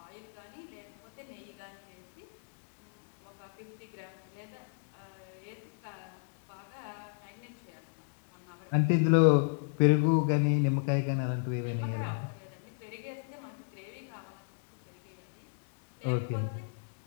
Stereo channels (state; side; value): silent; right; digital silence